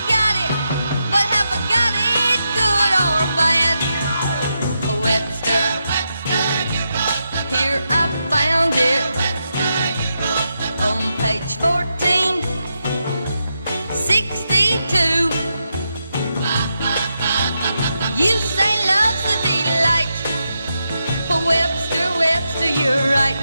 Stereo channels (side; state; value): both; inverted; correlation -0.85